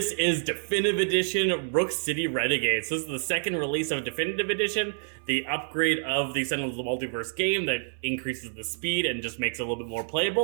is Definitive Edition Rook City Renegades. This is the second release of Definitive Edition, the upgrade of the Sentinels of the Multiverse game that increases the speed and just makes it a little bit more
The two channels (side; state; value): left; silent; 56 dB below the other